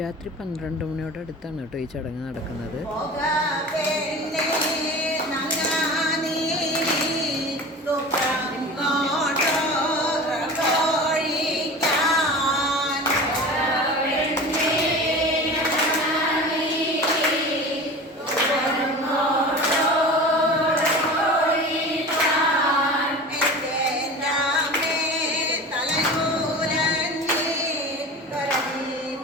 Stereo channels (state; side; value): normal; both; correlation 0.35